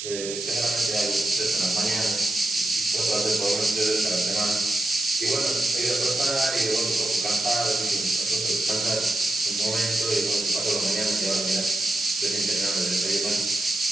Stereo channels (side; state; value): right; noise; hiss, 6 dB below the sound